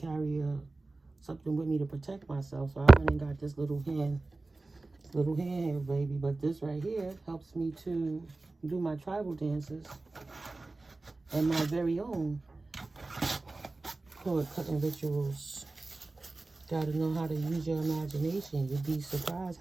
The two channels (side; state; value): left; quieter; 3.3 dB